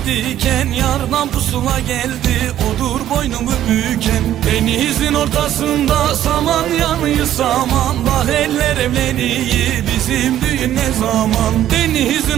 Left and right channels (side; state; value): left; quieter; 12.0 dB